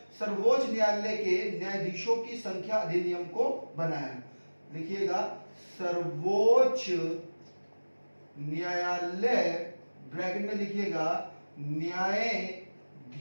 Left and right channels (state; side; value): inverted; both; correlation -1.00